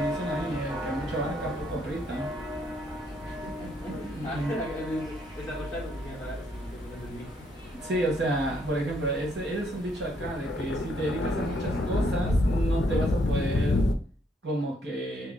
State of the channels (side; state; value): both; normal; correlation 0.71